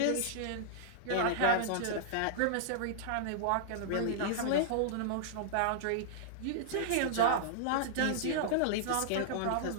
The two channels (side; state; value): both; different; correlation -0.02